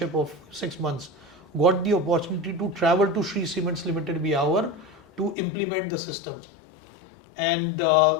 of 6 months, got the opportunity to travel to Shree Cements Limited Biawar to implement the system. And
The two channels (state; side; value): drops out; right; at 5.4 s